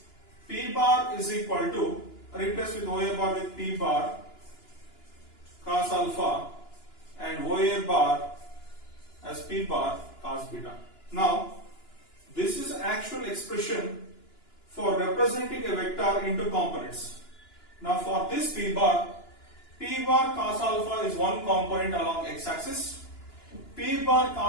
P bar is equal to, replace with OA bar with P bar cos alpha and OA bar as P bar cos beta. Now this is actual expression for representing a vector into components. Now for this P bar cos alpha is one component along x-axis, P bar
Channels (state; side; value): late; right; 2.9 ms